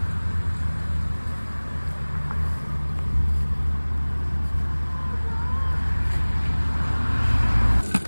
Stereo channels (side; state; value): both; inverted; correlation -1.00